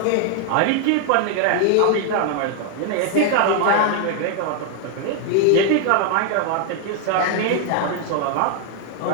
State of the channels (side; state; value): both; different; correlation 0.00